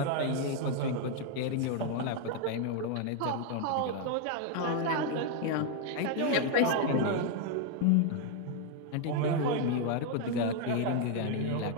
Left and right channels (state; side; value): different; both; correlation 0.00